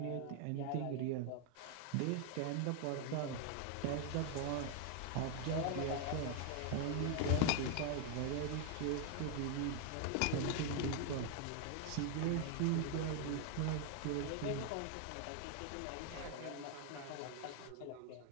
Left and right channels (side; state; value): both; different; correlation 0.00